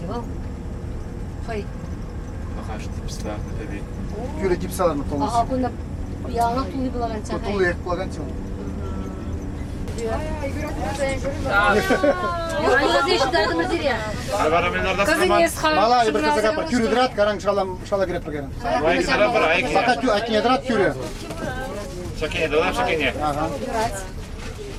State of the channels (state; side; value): identical; both; correlation 1.00